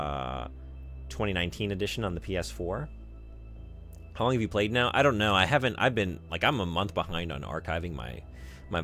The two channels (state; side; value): identical; both; correlation 1.00